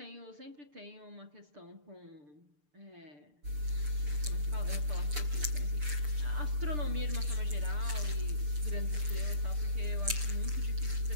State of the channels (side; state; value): left; late; 6.7 ms